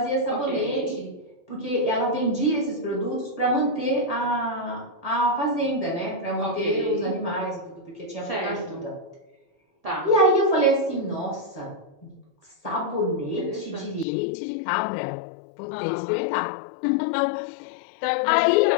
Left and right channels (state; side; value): drops out; right; at 14.1 s